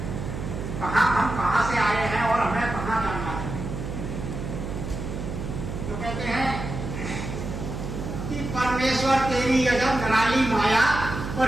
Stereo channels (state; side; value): noise; right; hum, 6 dB below the sound